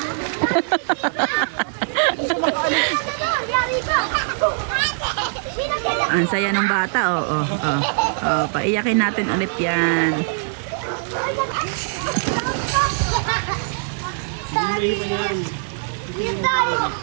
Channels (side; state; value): left; silent; digital silence